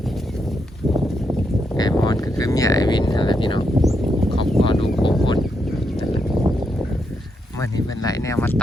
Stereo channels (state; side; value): normal; both; correlation 0.81